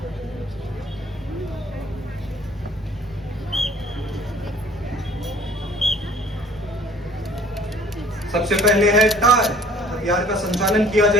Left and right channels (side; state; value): both; normal; correlation 0.53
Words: सबसे पहले है टार। हथियार का संचालन किया